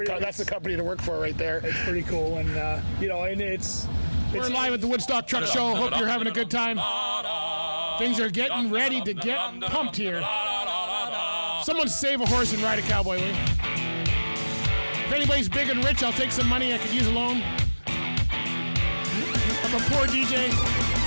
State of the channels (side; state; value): both; inverted; correlation -1.00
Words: the company to work for right there. It's pretty cool, and and it's. We're live at the Woodstock Truck Show. Hope you're having a good time. Things are getting ready to get pumped here. Someone save a horse and ride a cowboy, will you? If anybody's big and rich, I'll take some money. I could use a loan. I'm a poor DJ.